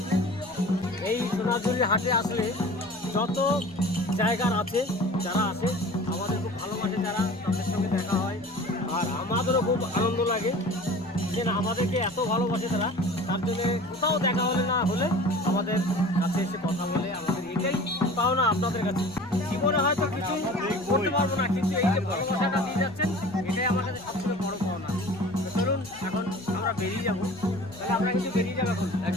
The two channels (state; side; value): noise; right; rumble, 28 dB below the sound